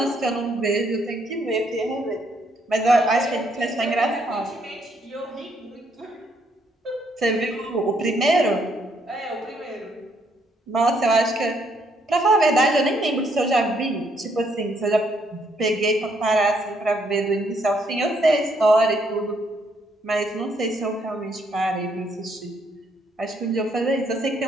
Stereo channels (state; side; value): normal; both; correlation 0.71